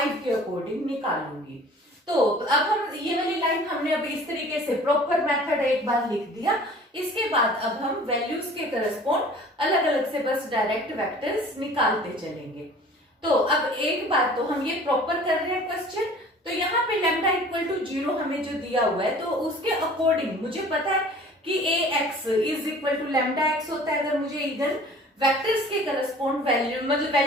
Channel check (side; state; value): both; normal; correlation 0.47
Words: के अकॉर्डिंग निकालूंगी। तो अब हम ये वाली लाइन हमने अब इस तरीके से प्रॉपर मेथड एक बार लिख दिया। इसके बाद अब हम वैल्यूज के करस्पॉन्ड अलग अलग से बस डायरेक्ट वेक्टर्स निकालते चलेंगे। तो अब एक बार तो हम ये प्रॉपर कर रहे हैं क्वेश्चन। तो यहाँ पे लैम्डा इक्वल टू 0 हमें जो दिया हुआ है तो उसके अकॉर्डिंग मुझे पता है कि ax is equal to lambda x होता है। अगर मुझे इगन वेक्टर्स के करस्पॉन्ड वैल्यू मतलब